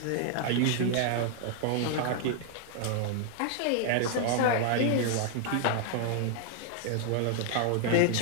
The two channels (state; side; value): different; both; correlation 0.00